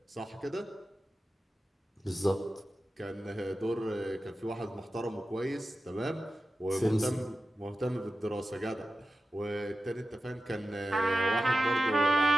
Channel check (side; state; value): both; normal; correlation 0.93